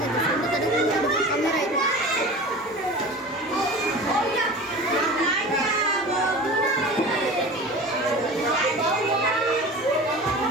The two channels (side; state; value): both; normal; correlation 0.36